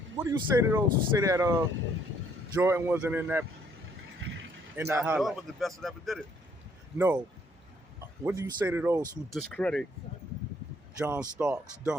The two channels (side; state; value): both; normal; correlation 0.66